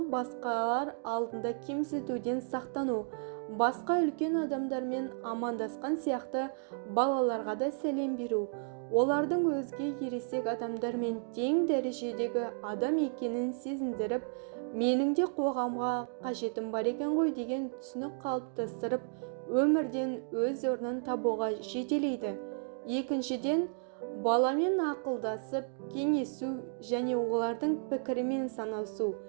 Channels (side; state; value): left; silent; 56 dB below the other